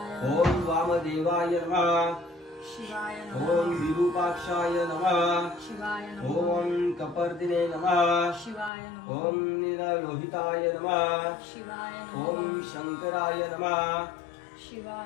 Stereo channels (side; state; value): right; drops out; at 8.7 s